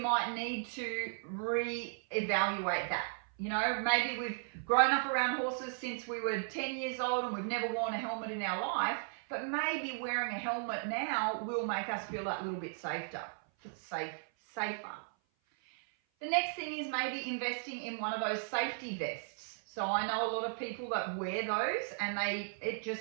need to re-evaluate that. Maybe we've grown up around horses since we were 10 years old and we've never worn a helmet in our life, but maybe wearing a helmet now will make us feel that little bit safer. The next thing is maybe investing in one of those safety vests. So I know a lot of people that wear those, and it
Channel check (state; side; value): silent; left; 54 dB below the other